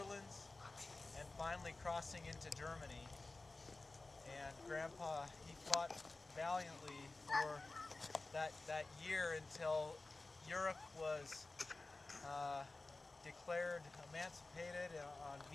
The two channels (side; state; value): right; quieter; 3.3 dB